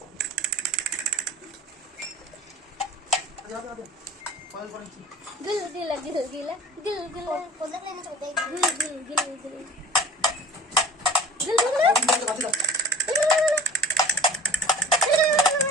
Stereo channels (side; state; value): both; normal; correlation 0.41